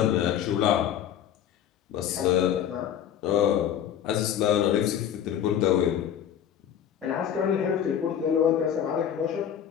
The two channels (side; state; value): right; quieter; 9.6 dB